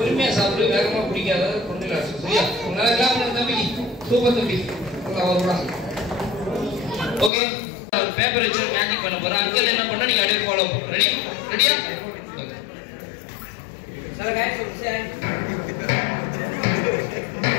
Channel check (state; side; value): drops out; right; at 7.3 s